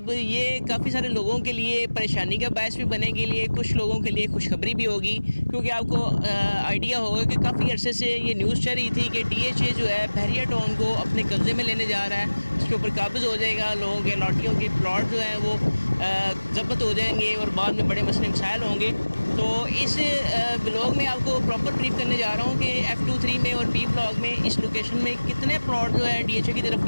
ये काफ़ी सारे लोगों के लिए परेशानी का बायस भी बनेगी, लिए कुछ लोगों के लिए खुशखबरी भी होगी, क्योंकि आपको आइडिया होगा कि काफ़ी अरसे से ये न्यूज़ चल रही थी कि DHA जो है बहरिया टाउन को अपने कब्ज़े में लेने जा रहा है, उसके ऊपर काबिज़ हो जाएगा। लोगों के लॉटियों के प्लॉट जो हैं वो ज़ब्त हो जाएंगे और बाद में बड़े मसले मसाइल होंगे। तो इस ब्लॉग में आपको प्रॉपर ब्रीफ करने जा रहा हूँ कि F2, 3 में और P ब्लॉक में इस लोकेशन में कितने प्लॉट जो है DHA की तरफ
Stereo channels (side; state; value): both; inverted; correlation -1.00